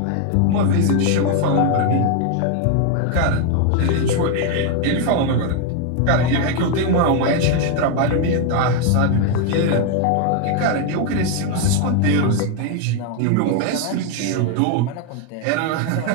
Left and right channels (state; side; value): different; both; correlation 0.01